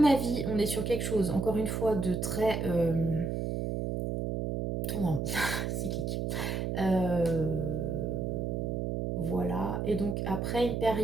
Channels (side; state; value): right; noise; hum, 1 dB below the sound